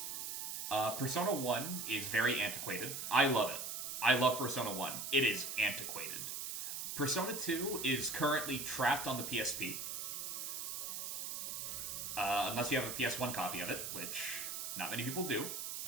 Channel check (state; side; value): noise; right; hiss, 4 dB below the sound